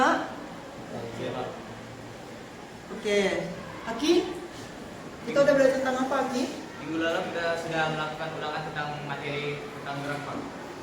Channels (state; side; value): identical; both; correlation 1.00